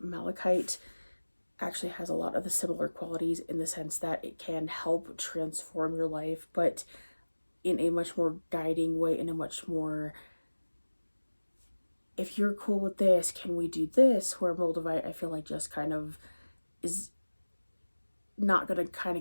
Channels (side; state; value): both; inverted; correlation -1.00